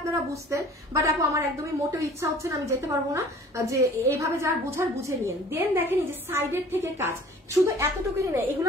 বুঝতেন, বাট আপু আমার একদমই মোটেও ইচ্ছা হচ্ছে না, আমি যেতে পারবো না, যে এইভাবে যার বুঝার বুঝে নিন। দেন দেখেন এই যে সাইডের থেকে কাজ, শুধু এতটুকুনি নেই,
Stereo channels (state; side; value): normal; both; correlation 0.49